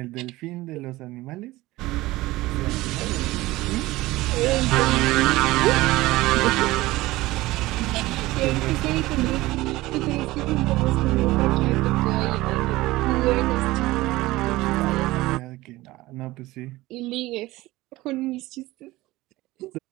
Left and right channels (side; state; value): left; quieter; 18.7 dB